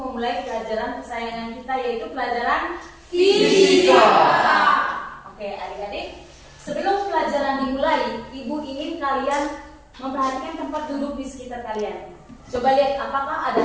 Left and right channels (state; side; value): identical; both; correlation 1.00